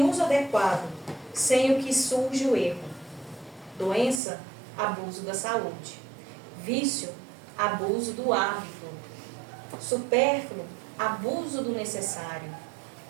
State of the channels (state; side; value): drops out; left; at 4.2 s